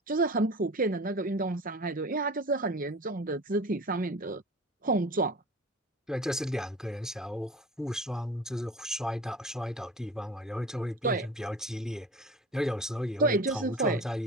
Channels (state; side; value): normal; both; correlation 0.37